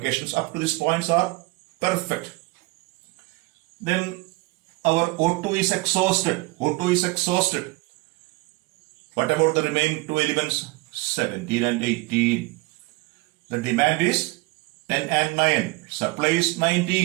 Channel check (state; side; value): quieter; left; 23.5 dB